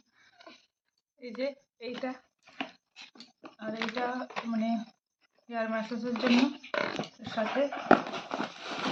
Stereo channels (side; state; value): both; identical; correlation 1.00